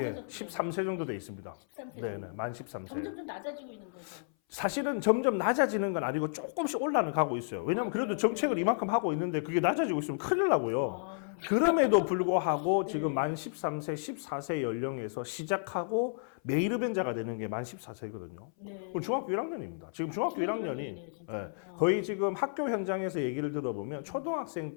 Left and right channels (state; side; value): silent; right; 56 dB below the other